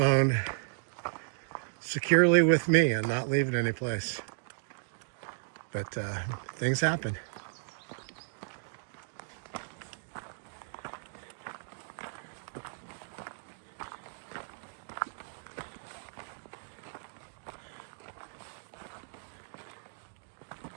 securely with me and not leave it anyplace. But things happen.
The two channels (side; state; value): left; silent; digital silence